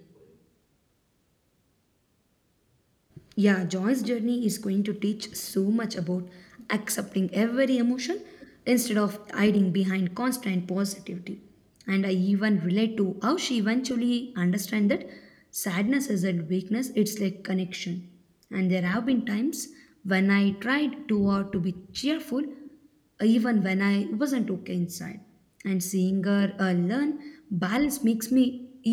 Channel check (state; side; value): identical; both; correlation 1.00